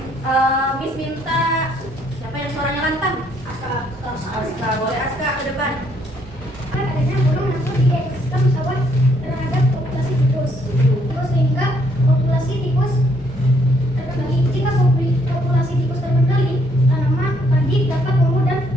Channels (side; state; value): both; normal; correlation 0.69